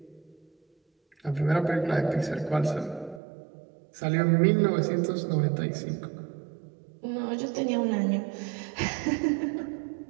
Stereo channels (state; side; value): drops out; left; at 3.2 s